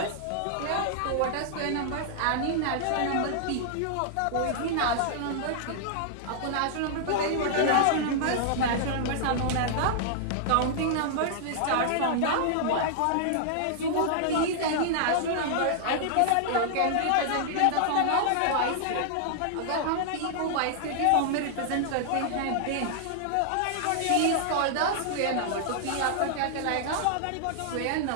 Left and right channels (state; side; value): different; both; correlation -0.01